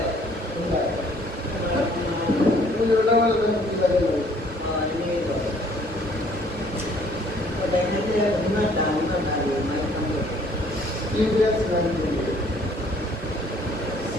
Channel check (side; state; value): both; normal; correlation 0.60